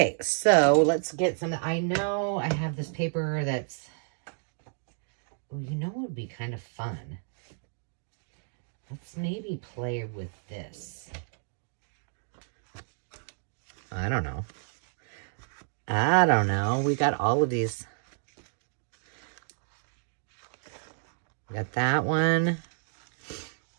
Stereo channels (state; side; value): silent; left; 57 dB below the other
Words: so let's get some. I know I have this paper that's, well, you know what would be kind of fun? Let's maybe play with this. I don't know. We got all of these. We got that one.